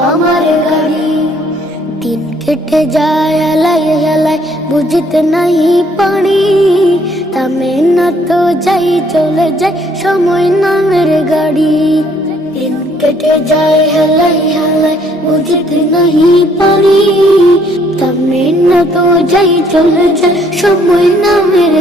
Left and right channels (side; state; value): both; normal; correlation 0.65